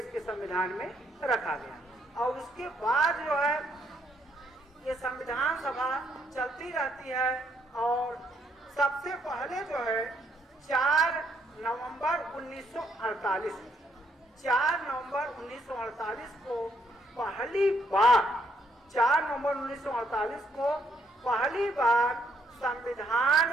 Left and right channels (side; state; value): both; normal; correlation 0.72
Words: के संविधान में रखा गया। और उसके बाद जो है ये संविधान सभा चलती रहती है। और सबसे पहले जो है 4 नवंबर 1948 को पहली बार 4 नवंबर 1948 को पहली बार